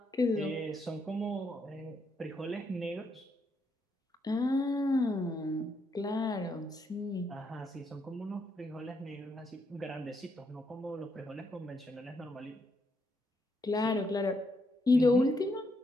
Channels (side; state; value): both; normal; correlation 0.77